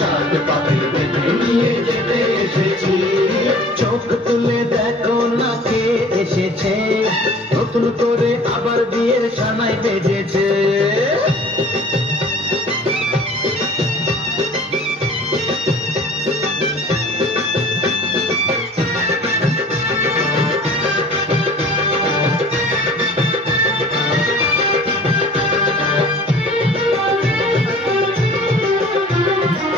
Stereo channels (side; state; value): both; normal; correlation 0.47